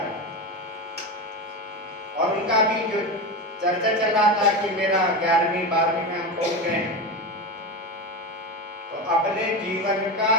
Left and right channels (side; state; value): both; normal; correlation 0.20